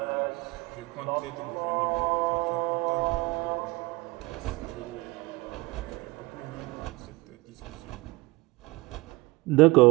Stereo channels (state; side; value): quieter; left; 23.1 dB